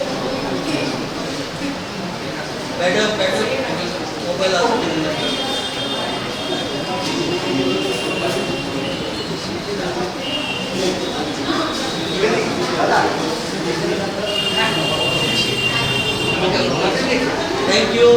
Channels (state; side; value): identical; both; correlation 1.00